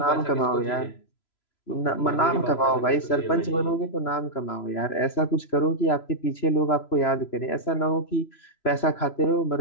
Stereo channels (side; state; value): right; late; 3.0 ms